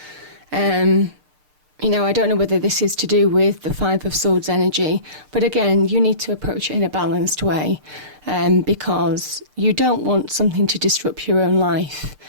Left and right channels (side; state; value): left; late; 6.7 ms